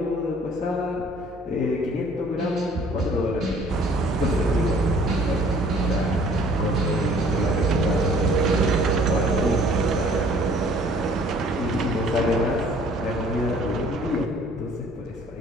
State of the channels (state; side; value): normal; both; correlation 0.55